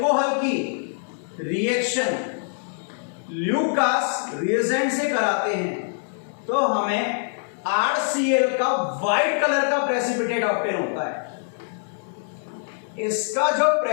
की रिएक्शन ल्यूकास रिएजेंट से कराते हैं तो हमें RCl का व्हाइट कलर का प्रेसिपिटेट ऑब्टेन होता है। इसका जो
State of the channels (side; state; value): right; silent; digital silence